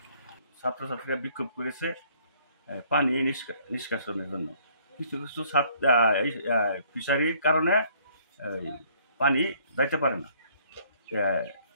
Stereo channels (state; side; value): inverted; both; correlation -0.61